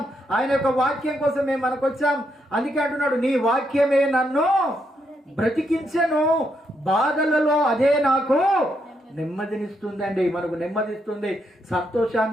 ఆయన యొక్క వాక్యం కోసమే మనకు వచ్చాం. అందుకే అంటున్నాడు, నీ వాక్యమే నన్ను బ్రతికించెను, బాధలలో అదే నాకు నెమ్మదినిస్తుందండి. మనకు నెమ్మదిస్తుంది,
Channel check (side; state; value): both; normal; correlation 0.78